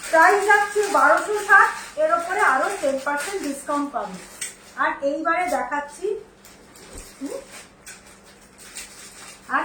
যাচ্ছে 1260, এর উপরে আরো 10% ডিসকাউন্ট পাবে। আর এইবারে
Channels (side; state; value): both; identical; correlation 1.00